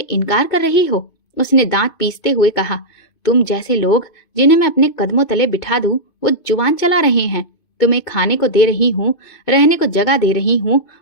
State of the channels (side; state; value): right; late; 2.5 ms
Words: इनकार कर रही हो? उसने दांत पीसते हुए कहा। तुम जैसे लोग जिन्हें मैं अपने कदमों तले बिठा दूं, वो जुबान चला रहे हैं। तुम्हें खाने को दे रही हूँ, रहने को जगह दे रही हूँ,